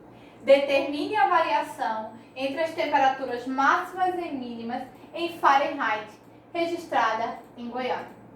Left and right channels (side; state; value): both; identical; correlation 1.00